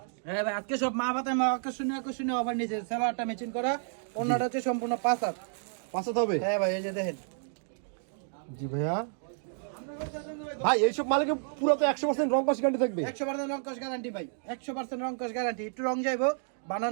হ্যাঁ ভাই আজকে সব মা বাতায় মা আকর্ষণীয় অফার নিয়েছে। সালোয়ারটা ম্যাচিং করা, ওনাটা হচ্ছে সম্পূর্ণ 5 হাত। 5 হাত হবে? হ্যাঁ ভাই এই যে দেখেন। জি ভাইয়া। ভাই এইসব মালিকে পুরো তো 100% রং কস গ্যারান্টি থাকবে? 100% রং কস গ্যারান্টি ভাই, 100% রং কস গ্যারান্টি। একটু রং যাইবো, বানান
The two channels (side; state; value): left; silent; digital silence